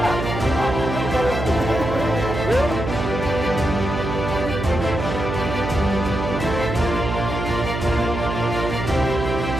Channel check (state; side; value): noise; right; hum, 4 dB below the sound